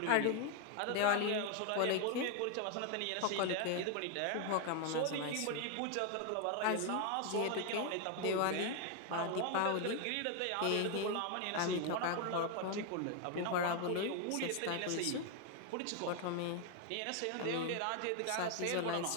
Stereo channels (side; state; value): both; different; correlation 0.01